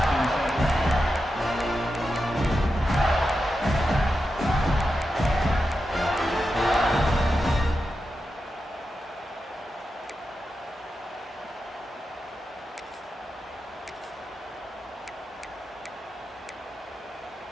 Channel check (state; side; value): normal; both; correlation 0.89